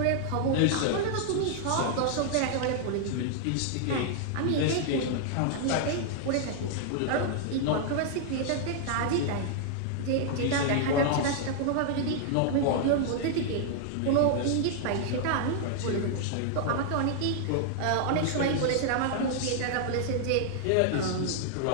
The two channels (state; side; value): different; both; correlation -0.01